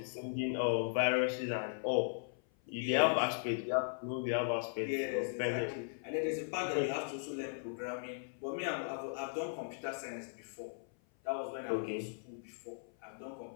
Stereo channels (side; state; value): right; silent; 53 dB below the other